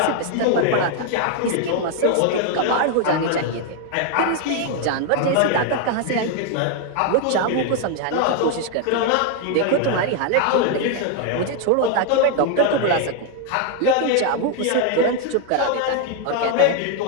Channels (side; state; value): both; different; correlation 0.00